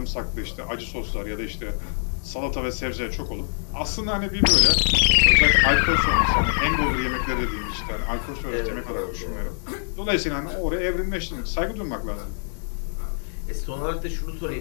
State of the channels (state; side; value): silent; right; digital silence